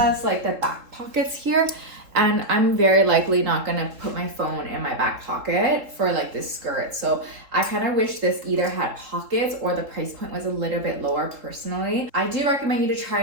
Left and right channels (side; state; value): left; late; 3.7 ms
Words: like the back pockets here, and I'm very likely not gonna put my phone in my back pocket for like this skirt. So I kind of wish this either had pockets or the price point was a little bit lower personally. I do recommend you to try